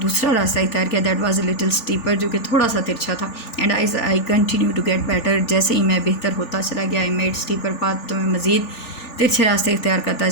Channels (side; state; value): right; late; 3.4 ms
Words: रास्ता इख्तियार किया, that was a little steeper, जो कि थोड़ा सा तिरछा था, and I continue to get better, जैसे ही मैं बेहतर होता चला गया, आई मेड स्टीपर पाथ, तो मैं मज़ीद तिरछे रास्ते इख्तियार करता